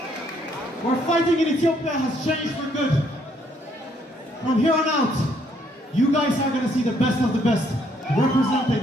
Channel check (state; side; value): normal; both; correlation 0.68